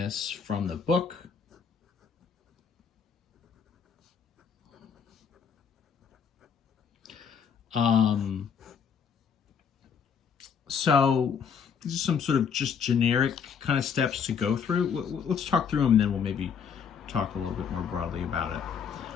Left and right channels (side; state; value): right; quieter; 6.8 dB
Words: from the book. So these are some sort of just generic kind of steps to go through. Let's talk through them, and then we'll maybe talk a little bit more broadly about it.